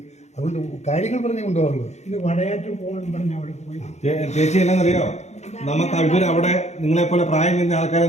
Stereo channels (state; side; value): late; right; 0.33 ms